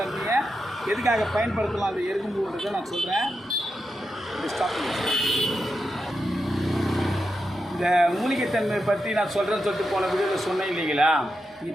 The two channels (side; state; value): both; normal; correlation 0.87